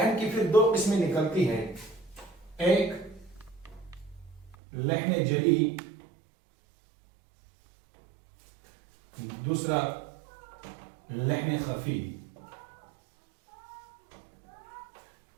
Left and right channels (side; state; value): left; drops out; at 4.5 s